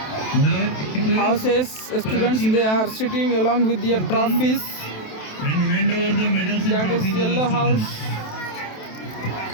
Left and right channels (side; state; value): right; late; 27 ms